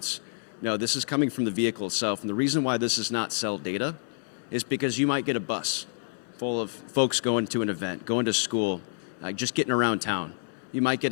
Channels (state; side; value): silent; right; 59 dB below the other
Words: No, this is coming from the vehicle itself. And the reason why this is not cell data is because you might get a bus full of folks going to an event, going to school, just getting around town. You might get